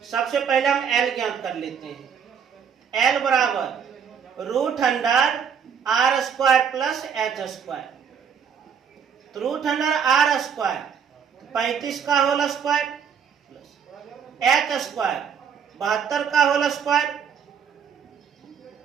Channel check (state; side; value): quieter; left; 7.2 dB